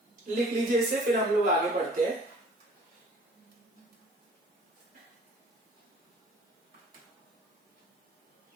लिख लीजिए इसे, फिर हम लोग आगे बढ़ते हैं।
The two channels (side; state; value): both; normal; correlation 0.52